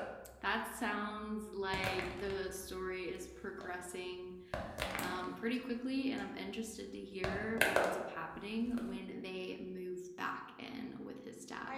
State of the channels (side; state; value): both; identical; correlation 1.00